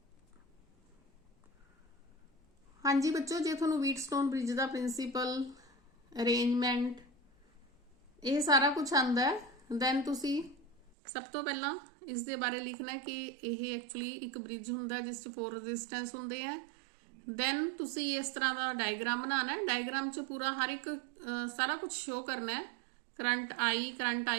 हाँ जी बच्चों, जे तुहानूं व्हीटस्टोन ब्रिज का प्रिंसीपल, अरेंजमेंट, ये सारा कुछ आंदा है, दैन तुसी सब तो पहला इस दे बारे लिखना है कि यह एक्चुअली एक ब्रिज हुंदा जिस 4 रेजिस्टेंस हुंदे हैं। दैन तुसी इस तरह का डायग्राम बनाना है। डायग्राम च पूरा हर एक सारा कुछ शो करना है। करंट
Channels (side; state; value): left; drops out; at 11.0 s